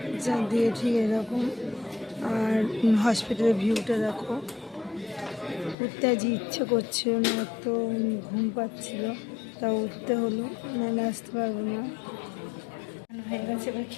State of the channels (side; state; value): right; drops out; at 5.8 s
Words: দিয়ে ঠিক এরকম। আর হসপিটালের ভিউটা দেখো। উঠতে আজ ইচ্ছে করছিল না, এত ঘুম পাচ্ছিল, তা উঠতে হলো, নাহলে আসতে পারবো না। হয়ে গেছে, এবার